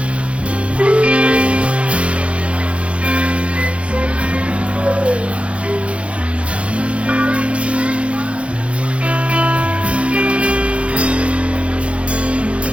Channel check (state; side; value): late; left; 0.061 ms